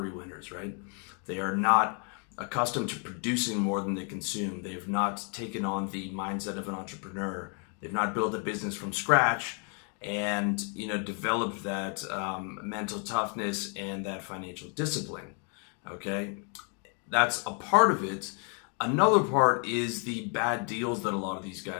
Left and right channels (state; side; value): quieter; right; 39.4 dB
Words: winners, right? They are not accustomed to producing more than they consume. They've not taken on the mindset of an entrepreneur. They've not built a business from scratch and developed that mental toughness and that financial discipline. Okay, that's a part of it. Another part is the bad deals that a lot of these